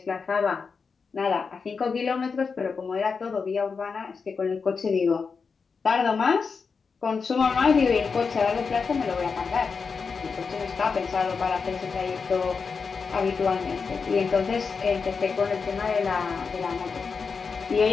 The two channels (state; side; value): quieter; right; 5.2 dB